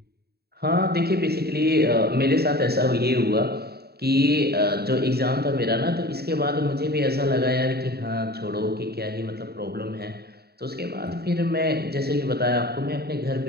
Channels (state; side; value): late; left; 0.46 ms